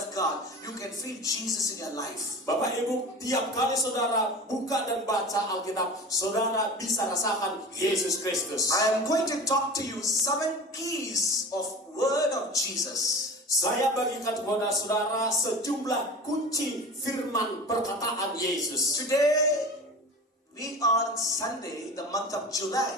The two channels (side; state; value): both; normal; correlation 0.35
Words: God, you can feel Jesus in your life. Bapak Ibu, tiap kali saudara buka dan baca Alkitab, saudara bisa rasakan Yesus Kristus. I am going to talk to you 7 keys of word of Jesus. Saya bagikan kepada saudara sejumlah kunci firman perkataan Yesus. Today, we are on Sunday, the month of